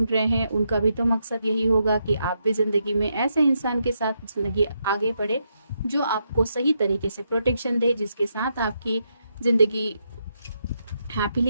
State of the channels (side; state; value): both; inverted; correlation -0.81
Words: रहे हैं, उनका भी तो मकसद यही होगा कि आप भी जिंदगी में ऐसे इंसान के साथ जिंदगी आगे बढ़े जो आपको सही तरीके से प्रोटेक्शन दे, जिसके साथ आपकी जिंदगी